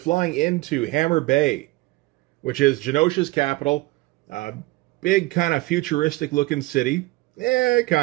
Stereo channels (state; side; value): quieter; left; 20.4 dB